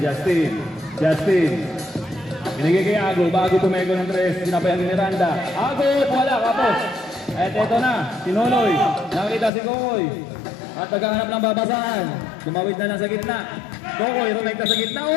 Binigay kay Ago, bago tumego ng 3, sinabayan ni Miranda. Ago, wala, kapos. At eto na, si Nonoy. Nakita si Kokoy. At naghahanap ng babasahan. Tumawid na lang sa gitna. Kokoy, rumekta sa gitna.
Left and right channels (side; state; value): right; drops out; at 9.5 s